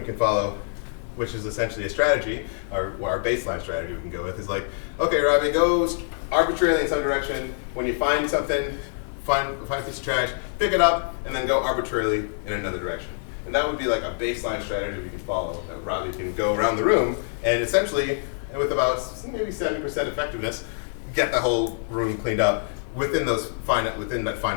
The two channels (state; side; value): silent; right; 62 dB below the other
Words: can follow, which is essentially a strategy, or our baseline strategy we can go with, is like, okay, Robbie, go arbitrarily in some direction. When you find something, find a piece of trash, pick it up, and then go arbitrarily in another direction. And that would be like a baseline strategy we can follow, that Robbie can go around the room and essentially, with about maybe 70% effectiveness, get the whole room cleaned up within that